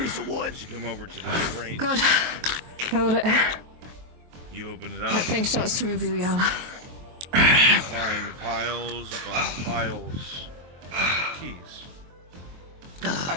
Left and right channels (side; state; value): left; late; 23 ms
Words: of wood. Come over to the crate. Good. Hold it. You open it up. That thing starts to move you, Yala. You find piles upon piles of keys. I